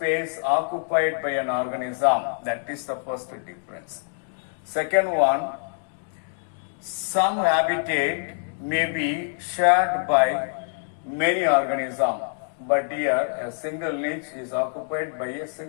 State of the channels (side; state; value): right; silent; digital silence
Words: occupied by an organism. That is the first difference. Second one, some habitat may be shared by many organisms, but here a single niche is occupied by a